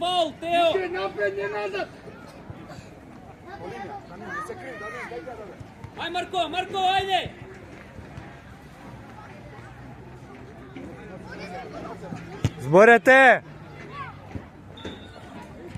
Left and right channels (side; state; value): both; identical; correlation 1.00